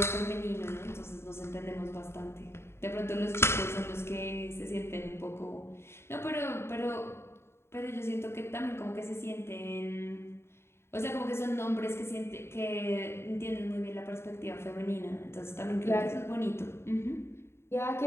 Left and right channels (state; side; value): late; right; 0.12 ms